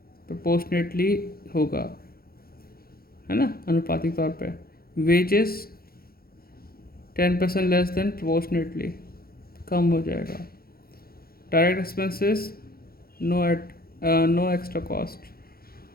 प्रोपोर्शनेटली होगा, है ना, अनुपातिक तौर पे। वेजेस 10% लेस देन प्रोपोर्शनेटली, कम हो जाएगा। Direct expenses no extra cost.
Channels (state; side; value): late; right; 0.44 ms